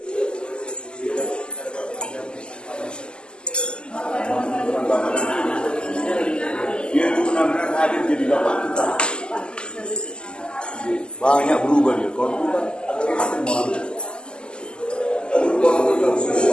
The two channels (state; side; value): late; right; 0.048 ms